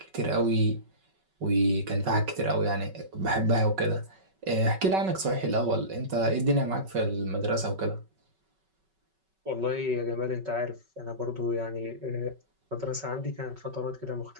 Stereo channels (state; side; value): late; left; 5.3 ms